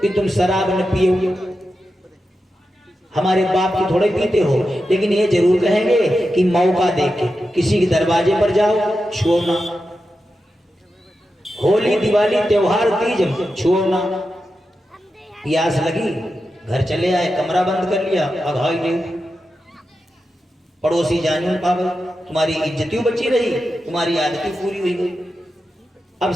कि तुम शराब न पियो, हमारे बाप की थोड़े पीते हो, लेकिन ये जरूर कहेंगे कि मौका देके किसी के दरवाजे पर जाओ, छुओ ना। होली, दिवाली, त्योहार, तीज, छुओ ना। प्यास लगी, घर चले आए, कमरा बंद कर लिया, अघाई नहीं, पड़ोसी जान पावे, तुम्हारी इज्जतियों बची रही, तुम्हारी आदतें पूरी हुई गई। अब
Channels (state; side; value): normal; both; correlation 0.90